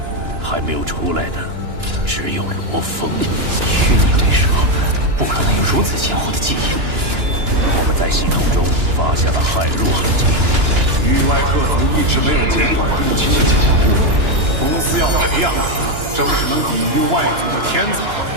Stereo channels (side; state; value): left; late; 2.9 ms